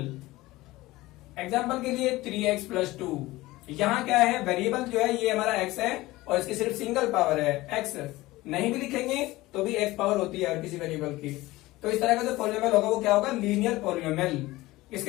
Example के लिए 3x + 2, यहाँ क्या है, वेरिएबल जो है ये हमारा x है और इसकी सिर्फ सिंगल पावर है x, नहीं भी लिखेंगे तो भी x पावर होती है किसी वेरिएबल की। तो इस तरह का जो पॉलिनोमियल होगा वो क्या होगा, लीनियर पॉलिनोमियल।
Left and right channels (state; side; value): quieter; right; 18.9 dB